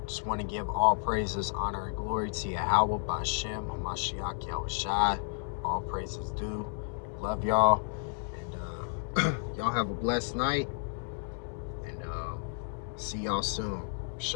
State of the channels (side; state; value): right; silent; digital silence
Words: Just want to give all praises, honor, and glory to Yahweh, Bashem, Hamashiach, Yahushai. All praises due. Love y'all. And y'all have a blessed night. And see y'all soon.